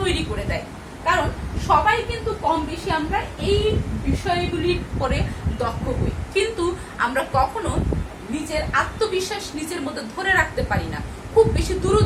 করে দেয়। কারণ সবাই কিন্তু কম বেশি আমরা এই বিষয়গুলির পরে দক্ষ হই, কিন্তু আমরা কখনো নিজের আত্মবিশ্বাস নিজের মধ্যে ধরে রাখতে পারি না, খুব বেশি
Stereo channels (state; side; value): identical; both; correlation 1.00